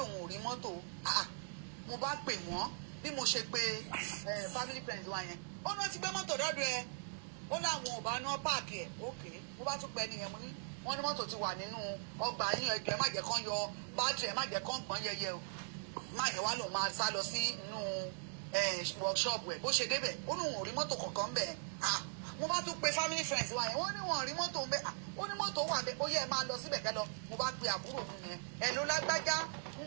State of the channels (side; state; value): left; silent; digital silence